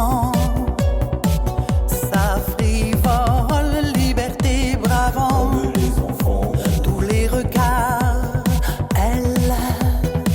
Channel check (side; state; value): both; identical; correlation 1.00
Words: Tous les regards, elle,